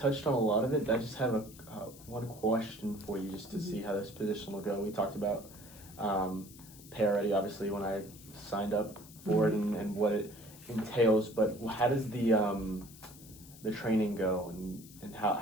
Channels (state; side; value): noise; left; hiss, 19 dB below the sound